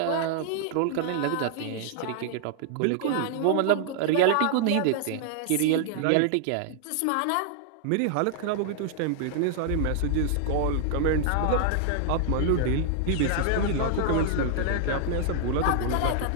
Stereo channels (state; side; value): different; both; correlation -0.01